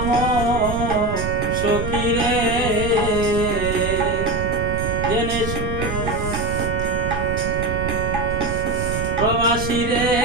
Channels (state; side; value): noise; right; rumble, 4 dB below the sound